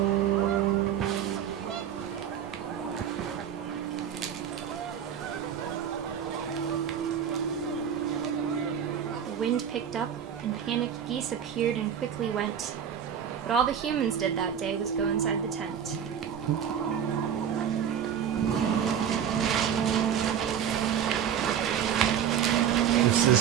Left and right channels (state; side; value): quieter; left; 8.7 dB